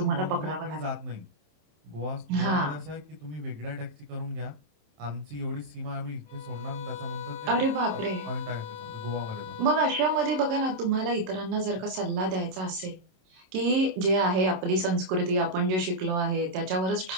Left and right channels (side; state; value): left; late; 27 ms